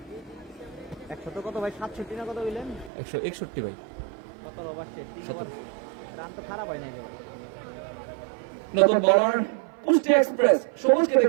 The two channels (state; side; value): drops out; left; at 2.9 s